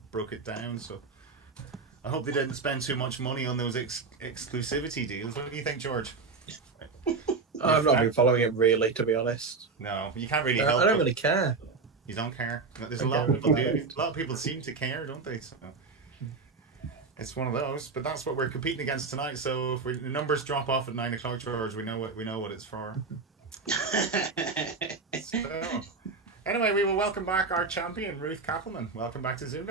broke it down, so I hope they didn't spend too much money on those exclusivity deals. What do you think, George? I've not been following it really, to be honest. No, you can't really help. I don't really care. You don't care. There's a lot of people do. A lot of people seem to care, don't they? So it's one of those. But that's what we're competing against tonight. So if the numbers drop off at 9 o'clock, George, we know what it's for. So, anyway, we will welcome back our champion, Ruth Cappleman. Welcome back to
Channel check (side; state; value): left; quieter; 4.4 dB